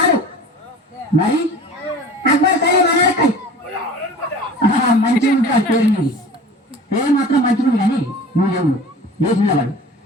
మరి అక్బర్ సలీం అనార్కలి. మంచిగా ఉంటుంది పేరు నీది. పేరు మాత్రం మంచిది కానీ నువ్వు ఎవరు లేచిన వాడు?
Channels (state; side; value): normal; both; correlation 0.41